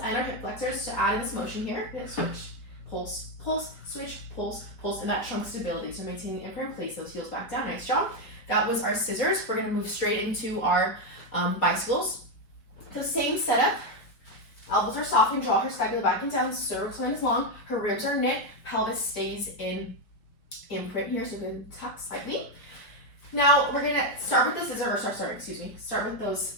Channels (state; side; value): late; right; 4.7 ms